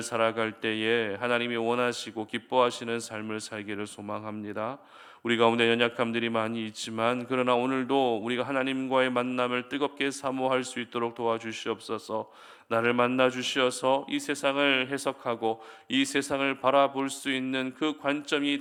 때에 하나님이 원하시고 기뻐하시는 삶을 살기를 소망합니다. 우리 가운데 연약함들이 많이 있지만 그러나 오늘도 우리가 하나님과의 만남을 뜨겁게 사모할 수 있도록 도와주시옵소서. 나를 만나 주시어서 이 세상을 해석하고 이 세상을 바라볼 수 있는 그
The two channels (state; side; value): identical; both; correlation 1.00